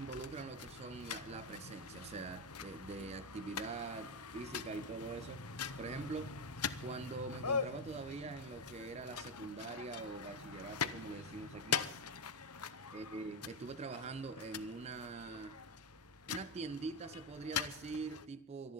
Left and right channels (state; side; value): normal; both; correlation 0.08